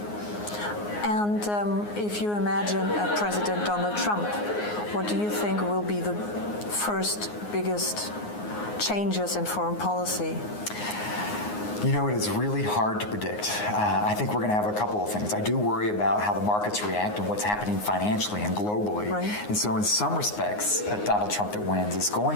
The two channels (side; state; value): right; late; 9.6 ms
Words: And if you imagine President Donald Trump, what do you think will be the first biggest changes in foreign policy? You know, it is really hard to predict. I think we're going to have a couple of things. I do worry about how the markets react and what's happening financially and globally. Right. And so in some respects, Donald Trump that wins is